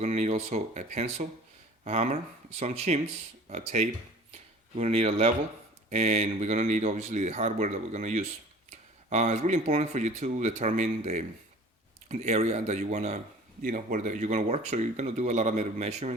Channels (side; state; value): both; normal; correlation 0.45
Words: to need also a pencil, a hammer, some chims, a tape. We're going to need a level, and we're going to need obviously the hardware that we're going to use. It's really important for you to determine the area that you want to, where you're going to work. So you're going to do a lot of